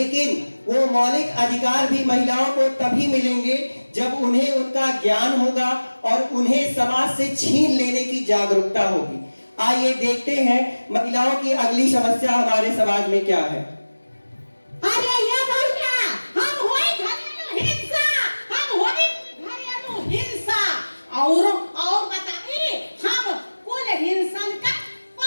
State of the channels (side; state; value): both; inverted; correlation -1.00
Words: वो मौलिक अधिकार भी महिलाओं को तभी मिलेंगे जब उन्हें उनका ज्ञान होगा और उन्हें समाज से छीन लेने की जागरूकता होगी। आइए देखते हैं महिलाओं की अगली समस्या हमारे समाज में क्या है। अरे ये भैया, हम होई घरेलू हिंसा, हम होई घरेलू हिंसा और बताइए, हम कुल हिंसन का